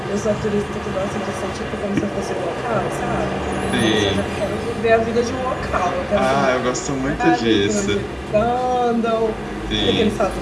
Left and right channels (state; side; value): identical; both; correlation 1.00